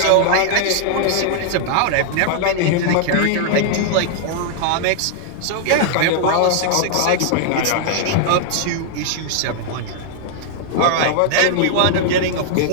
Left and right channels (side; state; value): both; different; correlation -0.01